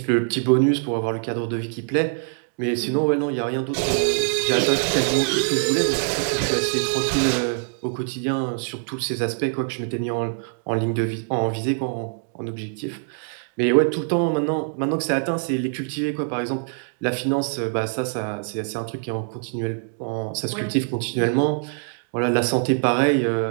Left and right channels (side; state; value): left; silent; digital silence